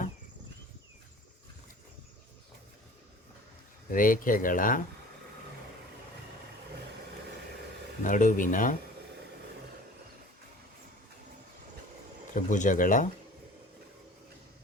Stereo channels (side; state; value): both; normal; correlation 0.44